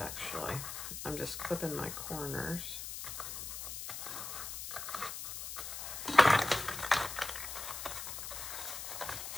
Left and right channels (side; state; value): left; noise; hiss, 6 dB below the sound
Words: I'm just clipping my corners.